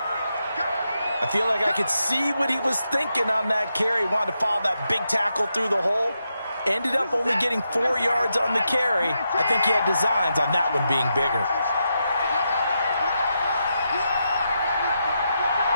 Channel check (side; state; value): both; inverted; correlation -0.84